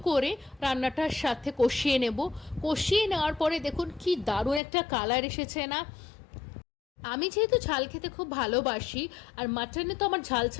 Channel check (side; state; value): right; drops out; at 4.6 s